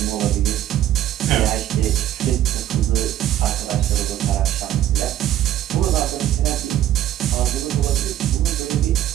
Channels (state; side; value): quieter; left; 12.4 dB